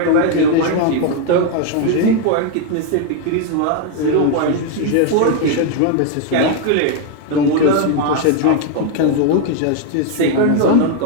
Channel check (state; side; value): different; both; correlation 0.01